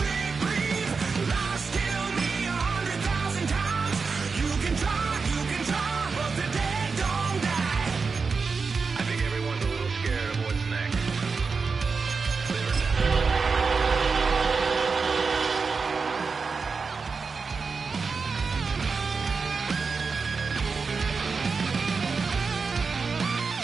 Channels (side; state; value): left; quieter; 4.8 dB